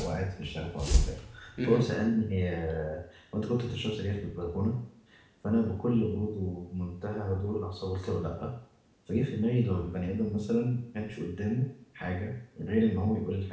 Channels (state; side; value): identical; both; correlation 1.00